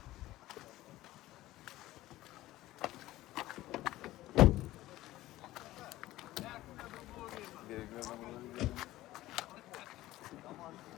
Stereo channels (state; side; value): quieter; right; 16.3 dB